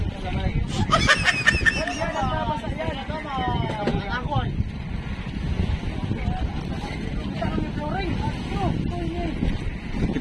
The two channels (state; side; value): identical; both; correlation 1.00